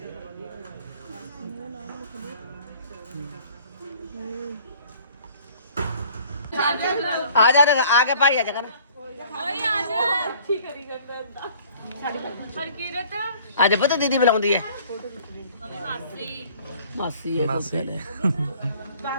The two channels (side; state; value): both; inverted; correlation -0.54